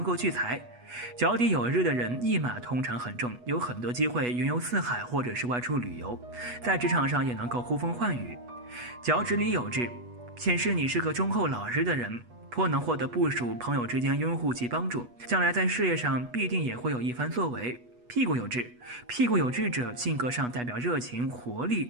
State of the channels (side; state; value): left; late; 8.2 ms